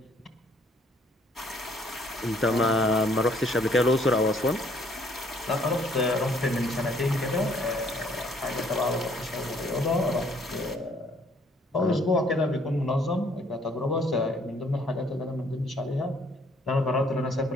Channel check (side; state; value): both; normal; correlation 0.63